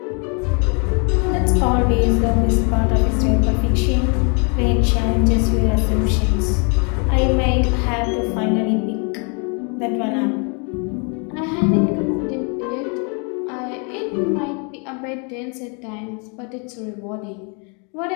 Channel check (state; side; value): quieter; right; 36.0 dB